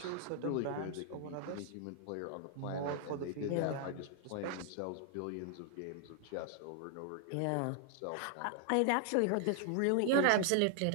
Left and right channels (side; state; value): both; different; correlation 0.00